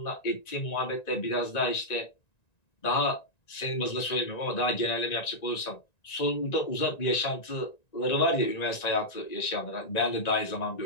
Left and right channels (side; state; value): right; late; 1.9 ms